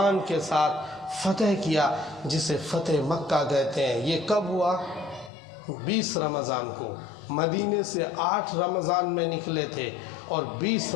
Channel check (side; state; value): right; drops out; at 5.3 s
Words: کے ساتھ فتح کیا، جسے فتح مکہ کہتے ہیں۔ یہ کب ہوا؟ 20 رمضان کو۔ مدینے سے 8 رمضان میں نکلے تھے اور 20